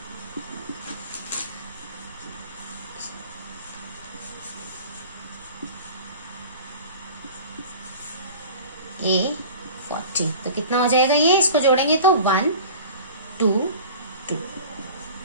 a 40। तो कितना हो जाएगा ये, इसको जोड़ेंगे तो 1 2 2।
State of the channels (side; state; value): both; inverted; correlation -0.40